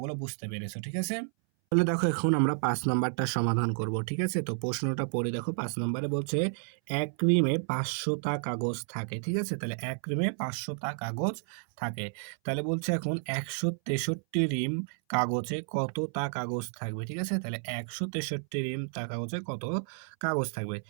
বুঝতে পেরেছো, ঠিক আছে? তাহলে দেখো এখন আমরা ৫ নাম্বারটা সমাধান করব, ঠিক আছে? তো প্রশ্নটা পড়ে দেখো, ৫ নম্বরে বলছে ১ রিমে ৫০০ টা কাগজ থাকে, ঠিক আছে? তাহলে ১ রিমে ৫০০ টা কাগজ থাকে। তাহলে বলছে এখন ১৬৩ রিম কাগজে কতটা কাগজ থাকবে, ঠিক আছে? তাহলে ১৬৩ রিম তা কাগজে কত কাগজ থাকবে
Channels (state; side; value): silent; left; 57 dB below the other